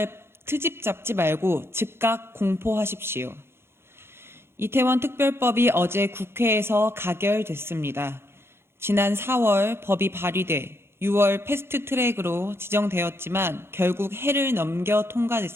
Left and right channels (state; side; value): late; left; 0.12 ms